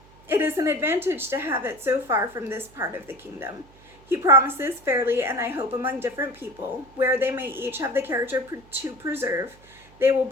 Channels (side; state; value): right; noise; hum, 26 dB below the sound